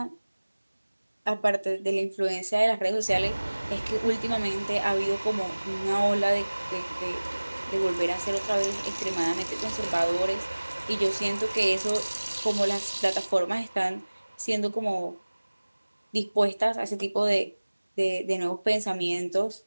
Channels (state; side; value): inverted; both; correlation -1.00